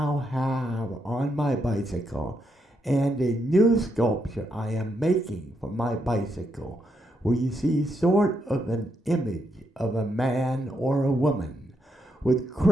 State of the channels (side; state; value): both; normal; correlation 0.79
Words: have on my bicycle, and a new sculpture I am making for my bicycle, where you see sort of an image of a man or a woman with